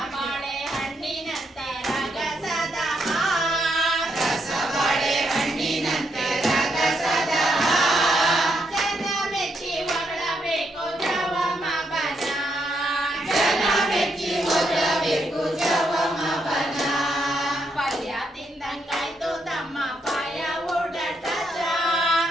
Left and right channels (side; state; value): both; normal; correlation 0.78